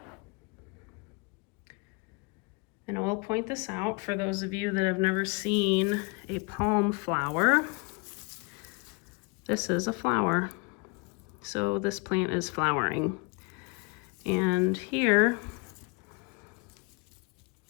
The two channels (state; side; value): quieter; right; 29.8 dB